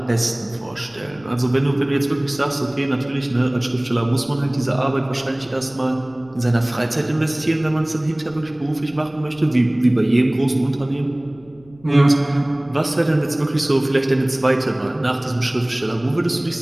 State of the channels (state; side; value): noise; left; rumble, 26 dB below the sound